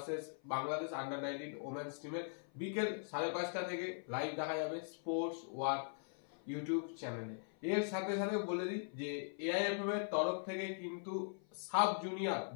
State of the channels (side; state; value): right; silent; 51 dB below the other